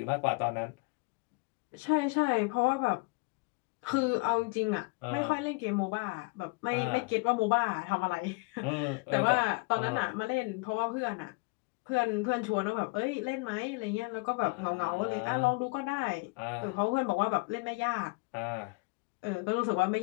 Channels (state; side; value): quieter; right; 27.9 dB